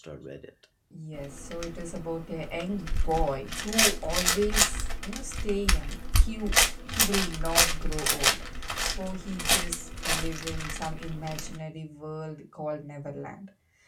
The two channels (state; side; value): identical; both; correlation 1.00